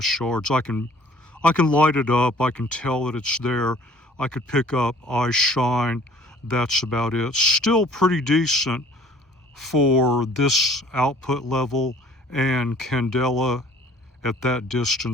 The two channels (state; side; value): normal; both; correlation 0.54